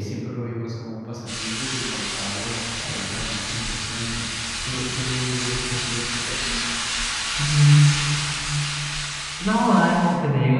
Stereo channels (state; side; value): identical; both; correlation 1.00